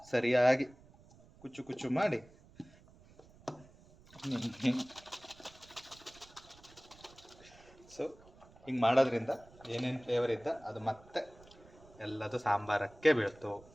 ಸರಿಯಾಗಿ ಕುಚ್ಚು ಕುಚ್ಚು ಮಾಡಿ ಸೊ ಹಿಂಗೆ ಮಾಡೋದ್ರಿಂದ ಏನೇನು ಫ್ಲೇವರ್ ಇದ್ದ ಅದು ಮತ್ತೆ ಎಲ್ಲದು ಸಾಂಬಾರಕ್ಕೆ ಬೀಳ್ತು.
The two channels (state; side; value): noise; right; rumble, 24 dB below the sound